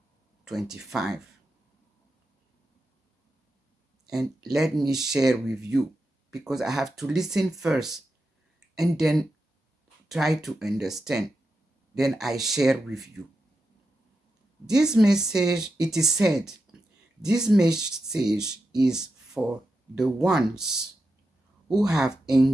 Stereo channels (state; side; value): normal; both; correlation 0.88